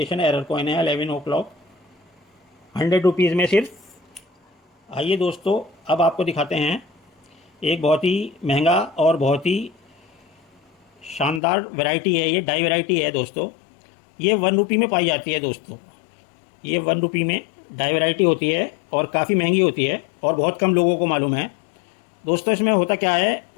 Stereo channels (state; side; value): drops out; right; at 11.4 s